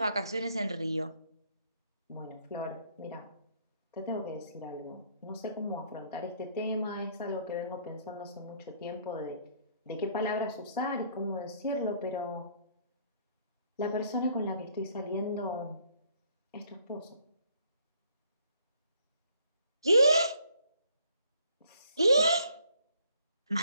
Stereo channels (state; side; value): inverted; both; correlation -0.64